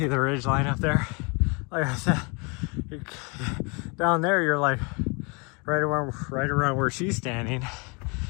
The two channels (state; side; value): quieter; right; 31.2 dB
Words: the ridge line up there. Like I said, down there you're like right around where she's standing.